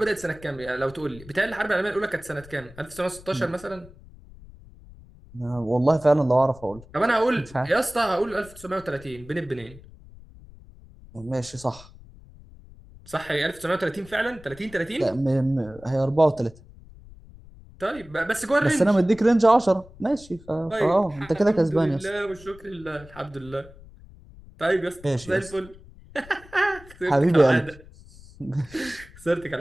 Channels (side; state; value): left; noise; rumble, 21 dB below the sound